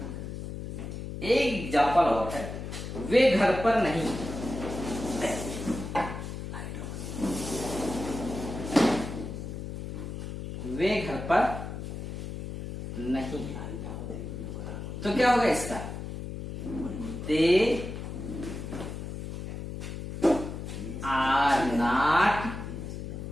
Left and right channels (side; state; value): left; noise; hum, 7 dB below the sound